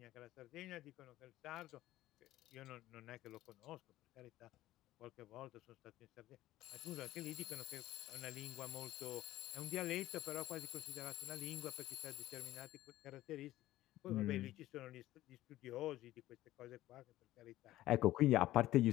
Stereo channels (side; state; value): right; quieter; 15.4 dB